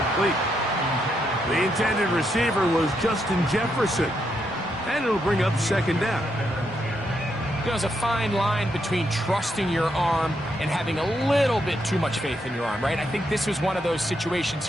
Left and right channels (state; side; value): normal; both; correlation 0.79